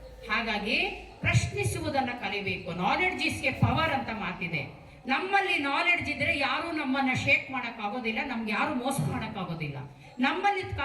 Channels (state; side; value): identical; both; correlation 1.00